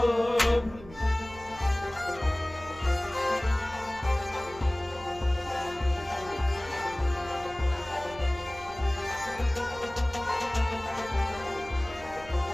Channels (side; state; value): right; noise; hum, 18 dB below the sound